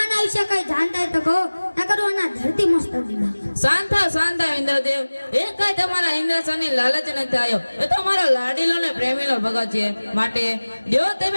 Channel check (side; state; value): both; inverted; correlation -1.00